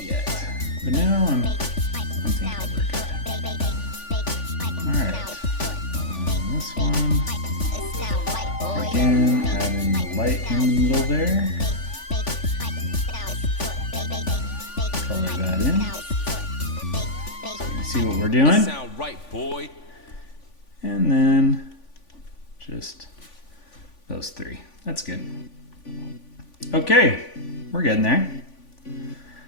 yet, but now I'm thinking we're good. Alright. This one, again, add in the light in the middle there, color that in, so you can see what we're doing, and then just those three. That's good. Okay, we're getting there.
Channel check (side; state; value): right; late; 3.5 ms